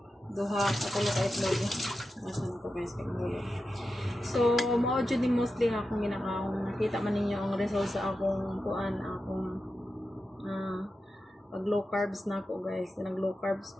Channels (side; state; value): both; normal; correlation 0.91